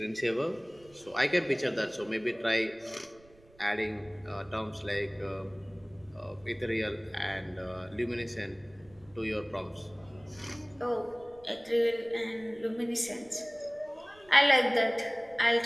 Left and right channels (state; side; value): noise; right; rumble, 27 dB below the sound